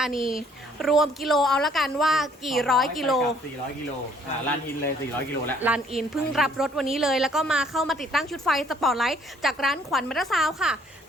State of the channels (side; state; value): both; normal; correlation 0.62